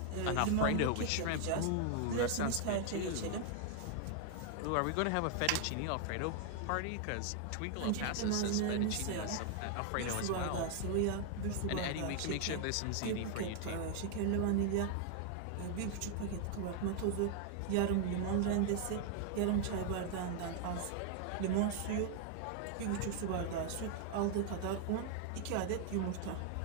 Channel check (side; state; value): both; different; correlation 0.00